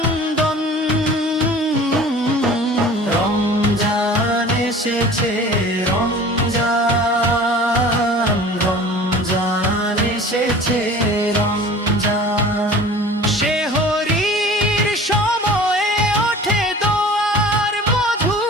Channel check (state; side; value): normal; both; correlation 0.43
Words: রমজান এসেছে রমজান রমজান এসেছে রমজান সেহরির সময়ে ওঠে দোয়ার